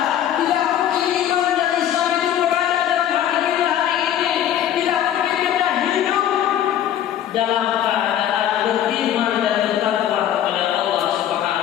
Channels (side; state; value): right; quieter; 10.8 dB